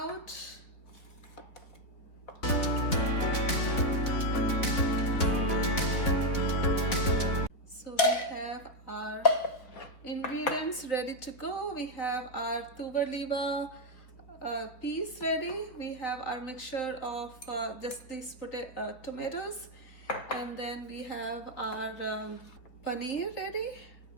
So we have our ingredients ready to go. We have our Tuvar Lilva peas ready. We have our mixture of just these tomatoes, and then we have our paneer ready.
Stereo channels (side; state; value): right; late; 4.0 ms